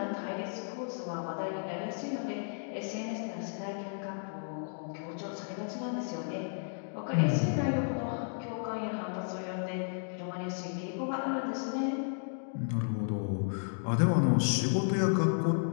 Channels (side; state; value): right; silent; digital silence